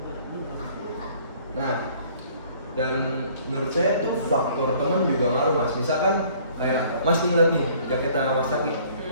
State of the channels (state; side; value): inverted; both; correlation -0.56